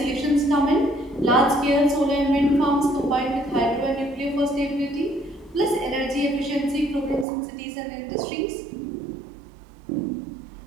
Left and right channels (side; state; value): left; drops out; at 7.2 s